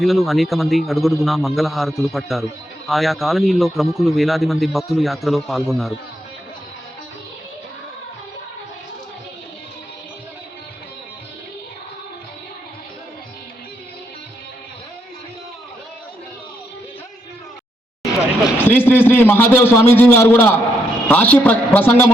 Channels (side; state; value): both; normal; correlation 0.78